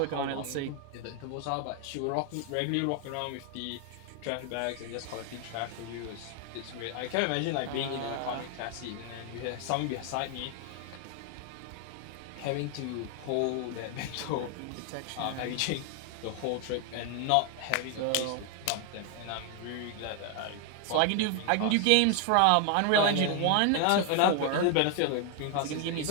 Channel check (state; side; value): different; both; correlation 0.00